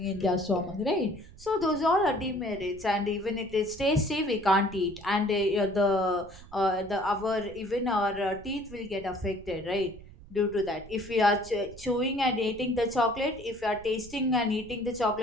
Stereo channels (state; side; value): noise; right; rumble, 19 dB below the sound